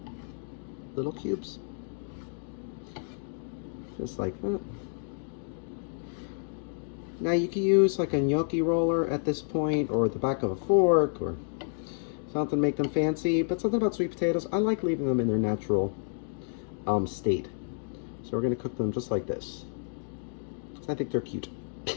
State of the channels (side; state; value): right; silent; 58 dB below the other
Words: little cubes, just like that. Now you can use like a gnocchi roller at this point, or the back of a fork, or something to make them fancy, but something about sweet potatoes, I like leaving them in their natural state. So we're gonna cook them just like this. I think they're cute